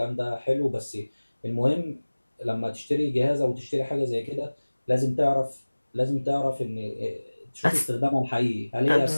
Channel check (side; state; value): both; inverted; correlation -1.00